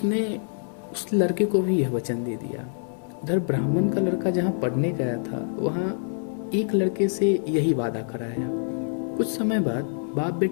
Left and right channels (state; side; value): silent; right; digital silence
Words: उस लड़के को भी यह वचन दे दिया। उधर ब्राह्मण का लड़का जहाँ पढ़ने गया था, वहाँ एक लड़के से यही वादा कराया। कुछ समय बाद बाप